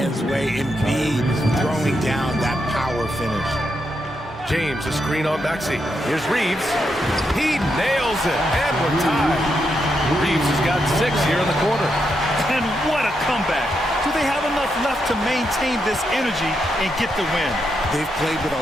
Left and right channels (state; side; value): normal; both; correlation 0.82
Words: way. Embiid throwing down that power finish. James, a screen on Maxey. Here's Reeves. He nails it, and we're tied. Reeves has got 6 here in the quarter. And what a comeback. Do they have enough left to maintain this energy and get the win? They've played with